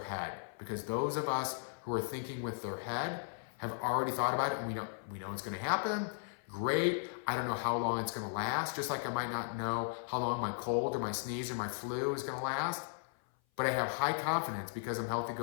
Because those of us who are thinking with their head have already thought about it and we know it's going to happen. Great. I don't know how long it's going to last. Just like I might not know how long my cold or my sneeze or my flu is going to last. But I have high confidence because I'm healthy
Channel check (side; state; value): right; silent; 53 dB below the other